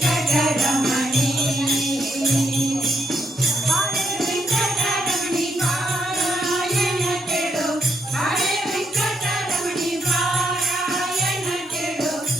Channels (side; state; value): both; normal; correlation 0.77